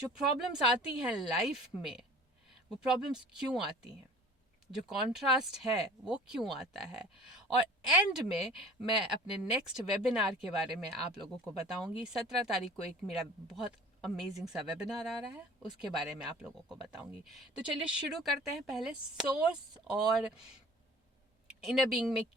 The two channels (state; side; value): normal; both; correlation 0.46